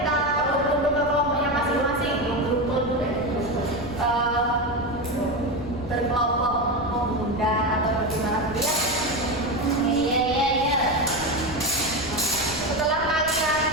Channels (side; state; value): left; noise; rumble, 13 dB below the sound